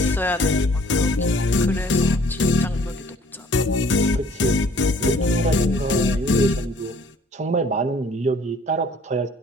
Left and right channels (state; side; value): normal; both; correlation 0.56